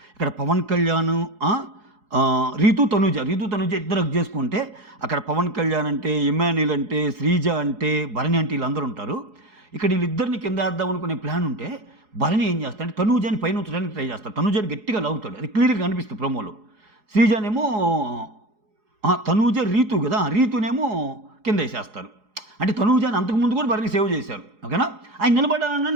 ఇక్కడ పవన్ కళ్యాణ్, రీతు తనూజ ఇద్దరు హక్ చేసుకుంటే అక్కడ పవన్ కళ్యాణ్ అంటే, ఇమాన్యుల్ అంటే, శ్రీజ అంటే, భరణి అంటే వీళ్ళందరూ ఉంటారు. ఇక్కడ వీళ్ళిద్దరిని కింద వేద్దాం అనుకునే ప్లాన్ ఉంటే భరణి ఏం చేస్తాడంటే తనూజాని పైన ఉంచడానికి ట్రై చేస్తాడు, తనూజాని గట్టిగా లాగుతాడు, అది క్లియర్గా కనిపిస్తుంది ప్రోమోలో. శ్రీజానేమో తనూజ రీతు కదా, రీతునేమో కింద వేసేస్తారు. అంటే తనూజాని అంతకుముందు కూడా భరణి సేవ్ చేశారు, ఓకేనా. ఆయన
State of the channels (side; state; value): left; late; 4.8 ms